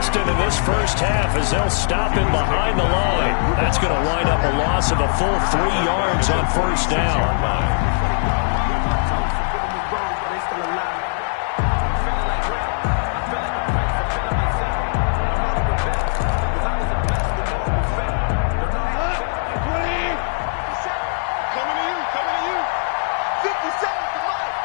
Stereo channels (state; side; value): silent; right; 65 dB below the other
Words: in this first half as they'll stop him behind the line. That's going to wind up a loss of a full 3 yards on first down.